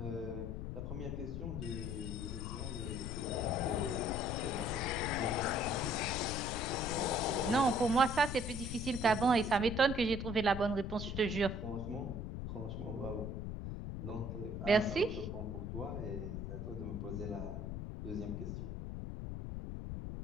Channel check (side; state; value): left; noise; rumble, 5 dB below the sound